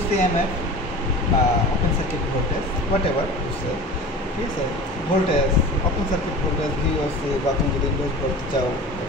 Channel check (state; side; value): normal; both; correlation 0.36